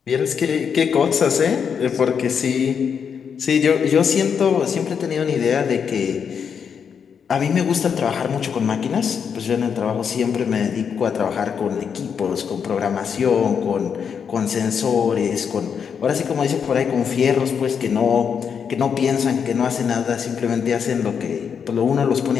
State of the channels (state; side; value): quieter; right; 7.0 dB